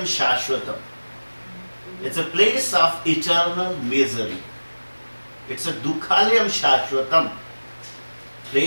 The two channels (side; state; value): both; inverted; correlation -1.00